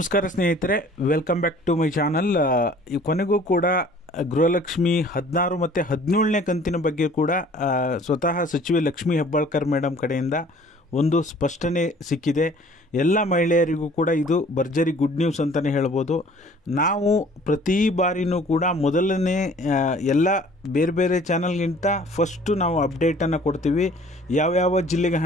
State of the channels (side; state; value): both; normal; correlation 0.52